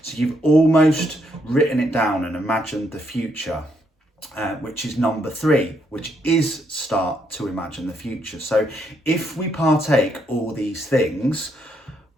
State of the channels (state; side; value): normal; both; correlation 0.75